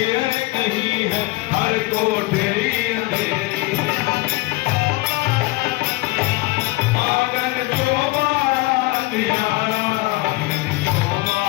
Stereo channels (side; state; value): right; quieter; 21.6 dB